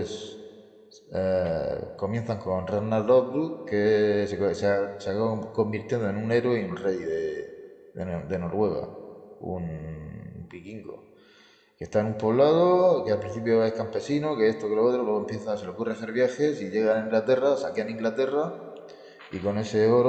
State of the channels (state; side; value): identical; both; correlation 1.00